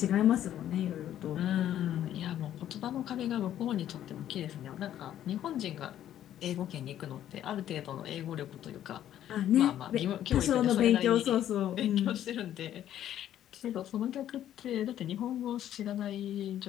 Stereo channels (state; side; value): quieter; right; 11.4 dB